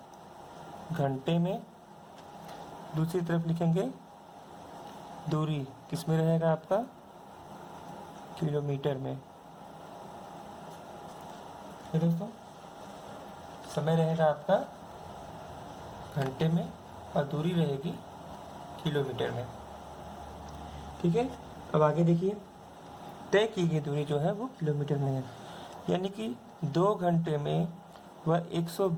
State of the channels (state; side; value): identical; both; correlation 1.00